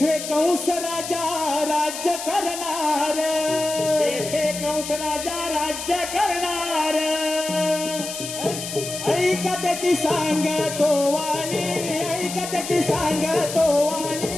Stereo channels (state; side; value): noise; left; hiss, 8 dB below the sound